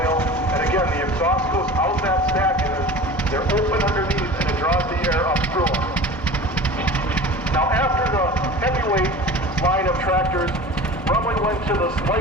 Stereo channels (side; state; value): both; normal; correlation 0.37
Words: and again, the exhaust goes out that stack, and they're open underneath, and it draws the air up through them. Now, after the heavyweight line of tractors, Runley went to the